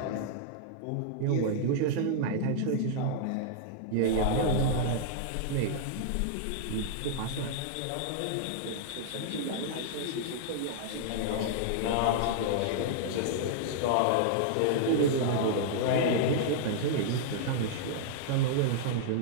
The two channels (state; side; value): different; both; correlation -0.01